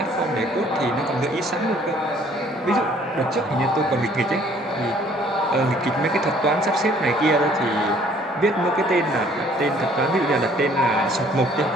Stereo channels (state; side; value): normal; both; correlation 0.59